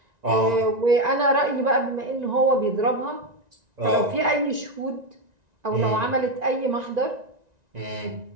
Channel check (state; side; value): late; left; 1.9 ms